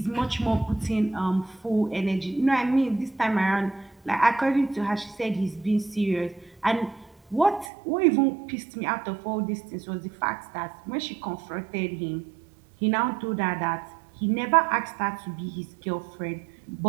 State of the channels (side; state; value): left; drops out; at 7.7 s